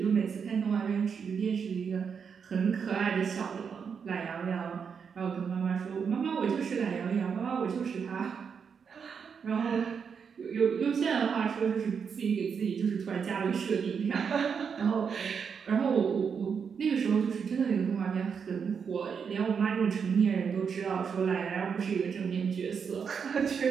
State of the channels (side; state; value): left; quieter; 6.5 dB